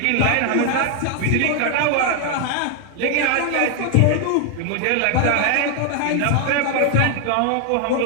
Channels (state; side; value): different; both; correlation 0.00